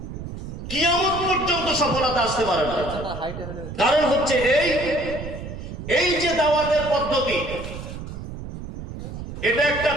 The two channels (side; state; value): right; noise; rumble, 9 dB below the sound